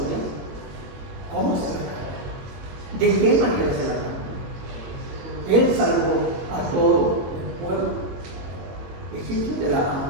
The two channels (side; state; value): left; late; 22 ms